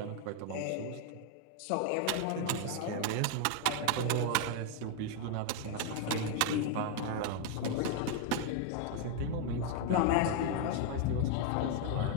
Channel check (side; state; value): both; different; correlation 0.00